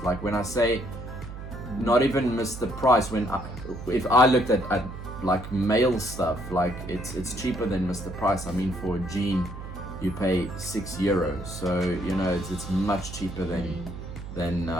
Like when I say not even miss the price, if I looked at like male stuff, like it's cheaper than Mr. Price. I mean, for a jean you pay €6, so you know it's much cheaper than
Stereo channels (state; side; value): noise; right; hum, 10 dB below the sound